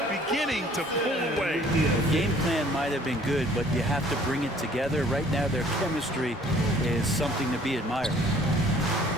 beginning to pull away. The game plan might have been good, but you have to bring it together. Right now, their chemistry is something to be admired.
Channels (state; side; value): normal; both; correlation 0.56